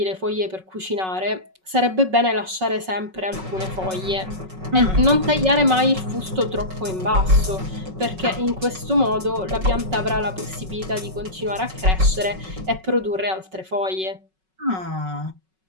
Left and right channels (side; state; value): left; late; 5.4 ms